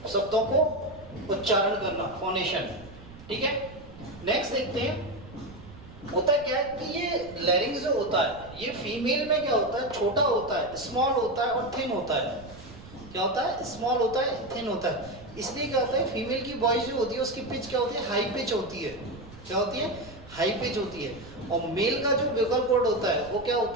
शब्दों को उच्चारण करना, फोनेशन। ठीक है, नेक्स्ट देखते हैं, होता क्या है कि ये लैरिंग्स जो होता है ये फीमेल में क्या होता है, छोटा होता है, स्मॉल होता है और थिन होता है। क्या होता है, स्मॉल होता है, थिन होता है। इसलिए क्या होता है, फीमेल की वॉइस जो होती है उसकी पिच क्या होती है, हाई पिच होती है। क्या होती है, हाई पिच होती है। और मेल का जो वोकल कॉर्ड होता है वो क्या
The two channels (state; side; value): noise; right; rumble, 18 dB below the sound